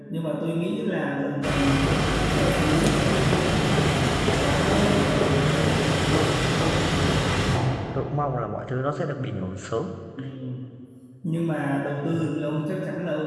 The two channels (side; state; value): both; identical; correlation 1.00